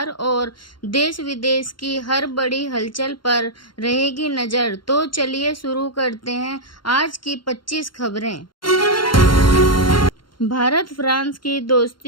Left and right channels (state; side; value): late; right; 0.72 ms